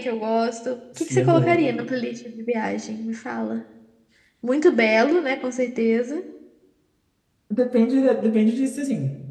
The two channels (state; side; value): identical; both; correlation 1.00